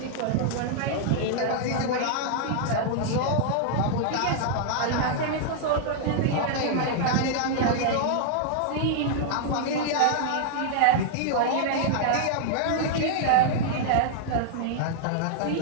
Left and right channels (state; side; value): different; both; correlation -0.01